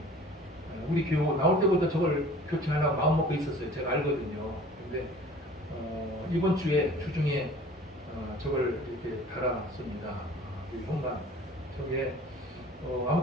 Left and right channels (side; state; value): both; normal; correlation 0.47